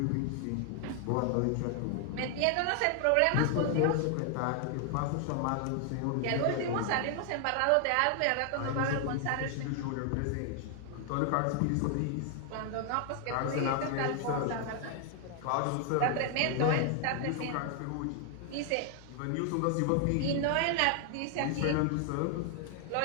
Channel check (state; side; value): different; both; correlation 0.00